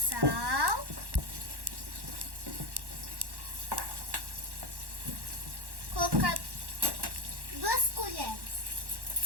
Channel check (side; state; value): left; late; 1.1 ms